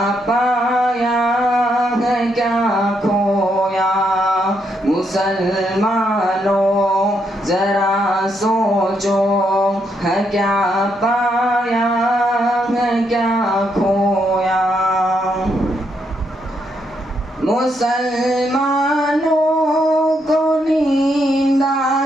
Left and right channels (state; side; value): normal; both; correlation 0.77